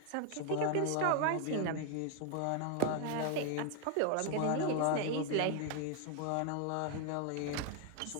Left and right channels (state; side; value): different; both; correlation 0.00